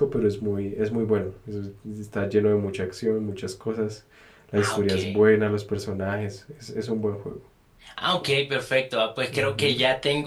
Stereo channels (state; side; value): identical; both; correlation 1.00